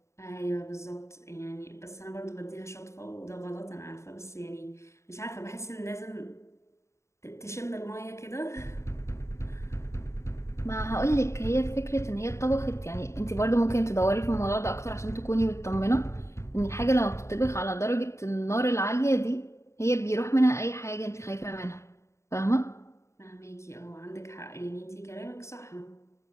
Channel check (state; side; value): late; right; 0.14 ms